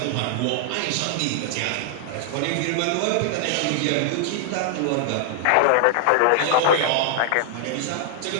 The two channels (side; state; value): both; different; correlation -0.01